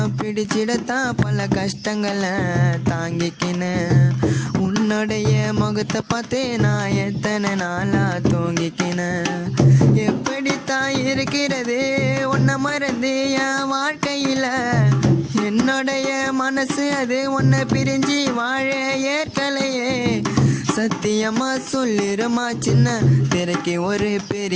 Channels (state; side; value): identical; both; correlation 1.00